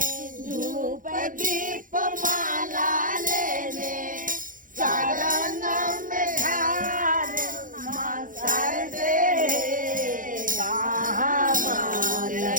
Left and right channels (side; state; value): left; late; 0.39 ms